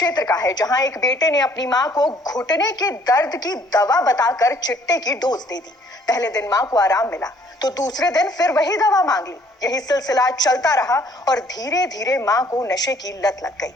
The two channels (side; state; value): both; normal; correlation 0.60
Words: का है, जहां एक बेटे ने अपनी मां को घुटने के दर्द की दवा बताकर चिट्टे की डोज दे दी। पहले दिन मां को आराम मिला तो दूसरे दिन फिर वही दवा मांग ली। यही सिलसिला चलता रहा और धीरे धीरे मां को नशे की लत लग गई।